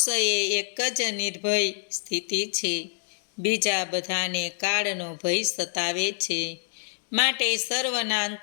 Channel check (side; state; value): right; silent; digital silence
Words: એ એક જ નિર્ભય સ્થિતિ છે. બીજા બધાને કાળનો ભય સતાવે છે. માટે સર્વના